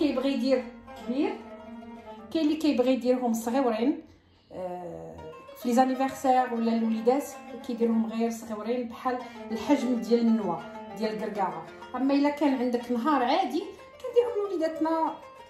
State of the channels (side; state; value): both; identical; correlation 1.00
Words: يدير كبير، كاين اللي كيبغي يديرهم صغيورين في لي زانيفرسير ولا الوليدات كيديرهم غير صغيورين بحال الحجم ديال النوى ديال الكركاعه. اما الا كان عندك نهار عادي كنديرهم وليداتنا